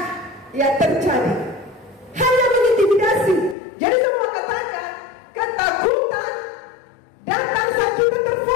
terjadi, hanya mengintimidasi. Jadi semua katakan ketakutan datang saat kita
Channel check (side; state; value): right; drops out; at 3.6 s